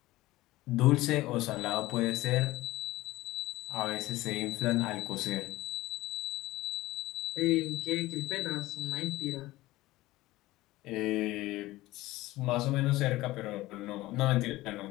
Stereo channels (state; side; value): quieter; right; 18.0 dB